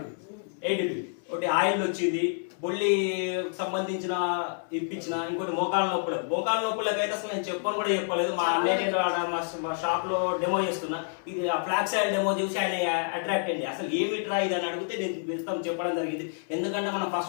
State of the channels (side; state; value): right; silent; digital silence